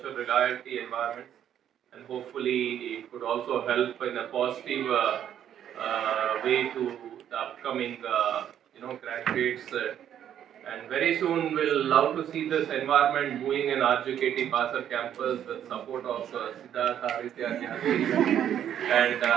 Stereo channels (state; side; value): quieter; left; 10.0 dB